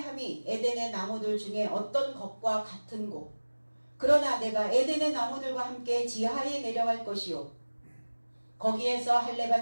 에덴의 나무들 중에 어떤 것과 같은고, 그러나 내가 에덴의 나무들과 함께 지하에 내려갈 것이요 거기에서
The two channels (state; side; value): inverted; both; correlation -1.00